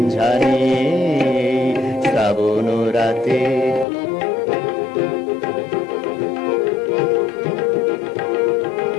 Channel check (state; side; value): drops out; right; at 3.9 s